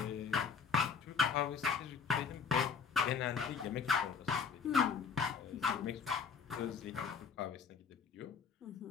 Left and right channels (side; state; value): right; quieter; 6.1 dB